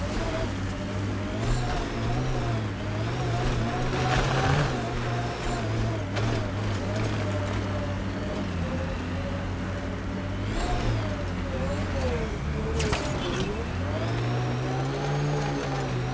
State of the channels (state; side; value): identical; both; correlation 1.00